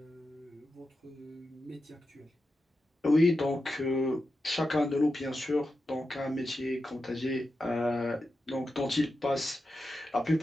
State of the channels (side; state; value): both; normal; correlation 0.90